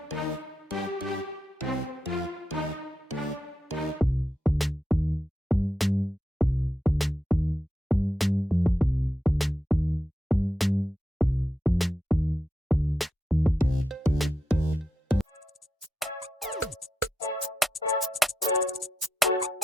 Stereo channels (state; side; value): normal; both; correlation 0.86